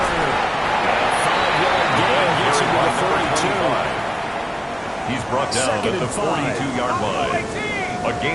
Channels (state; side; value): identical; both; correlation 1.00